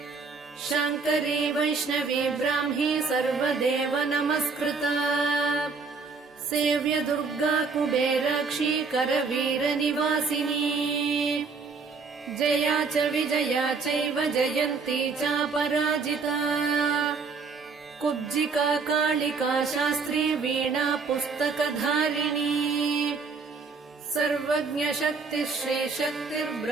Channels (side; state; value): left; quieter; 4.7 dB